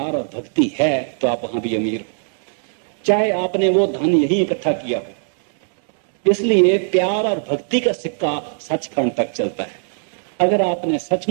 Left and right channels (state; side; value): silent; left; digital silence